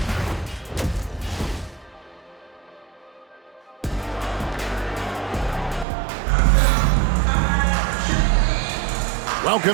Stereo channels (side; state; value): left; drops out; at 5.9 s